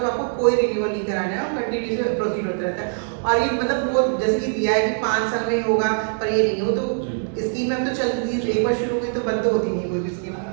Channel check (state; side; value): silent; left; 64 dB below the other